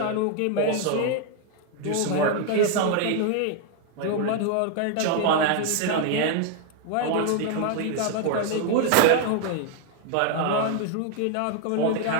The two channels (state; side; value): different; both; correlation 0.00